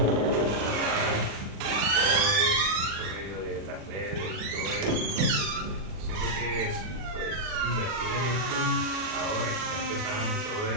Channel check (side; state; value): left; late; 40 ms